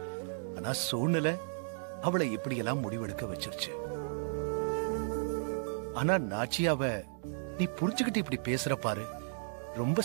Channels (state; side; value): silent; left; digital silence